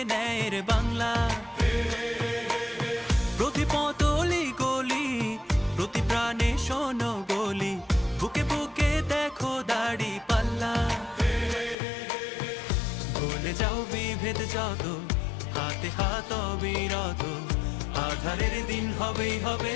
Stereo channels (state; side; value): drops out; right; at 11.8 s